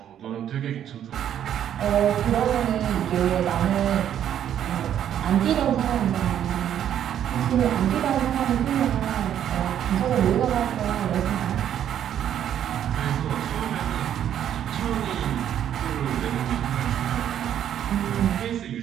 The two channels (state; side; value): quieter; left; 10.2 dB